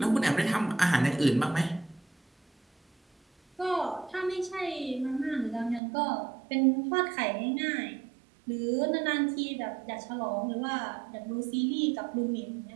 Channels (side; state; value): left; drops out; at 5.8 s